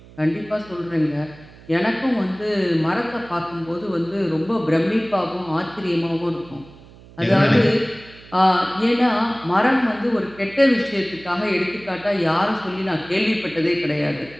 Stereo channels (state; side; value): noise; right; hum, 22 dB below the sound